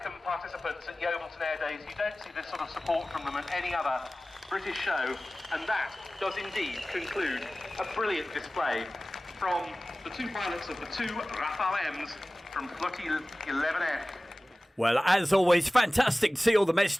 participants at Yeovilton Air Days. You don't see this sort of support from them at any other British show, and that does indeed conclude a brilliant display from the two pilots of the two Rafale M's from Flottille 11F. Well, as always, fantastic to see all the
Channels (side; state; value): both; normal; correlation 0.97